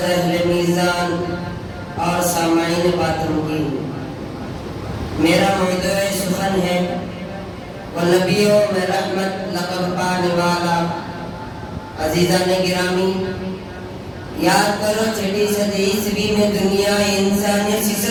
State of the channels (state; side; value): identical; both; correlation 1.00